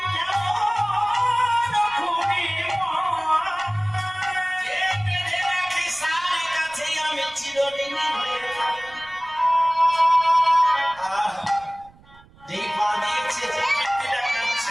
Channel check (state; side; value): noise; right; rumble, 26 dB below the sound